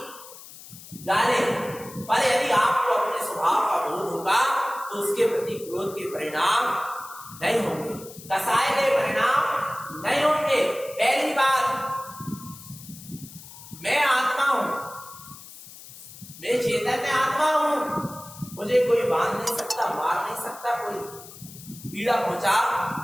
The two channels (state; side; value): noise; left; hiss, 17 dB below the sound